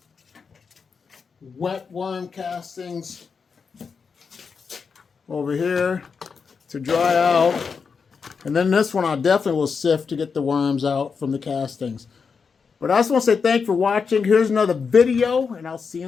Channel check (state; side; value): quieter; right; 5.6 dB